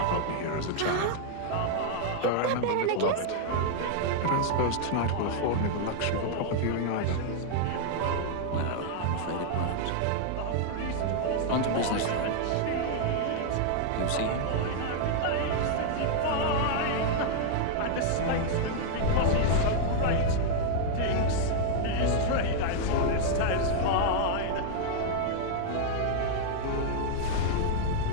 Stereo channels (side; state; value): both; different; correlation -0.01